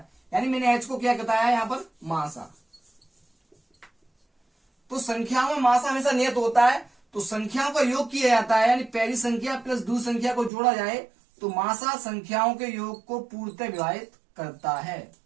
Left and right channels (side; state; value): left; drops out; at 10.5 s